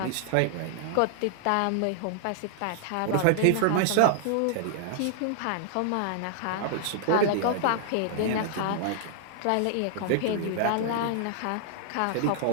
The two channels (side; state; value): both; different; correlation -0.01